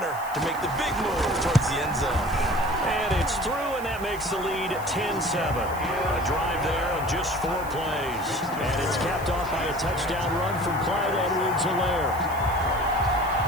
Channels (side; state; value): left; noise; hiss, 18 dB below the sound